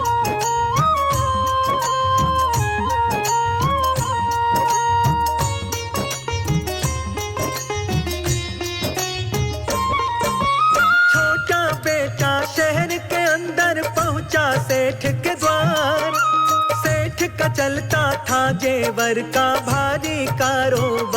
शहर के अंदर पहुंचा सेठ के द्वार। सेठ का चलता था जेवर का भारी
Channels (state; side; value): identical; both; correlation 1.00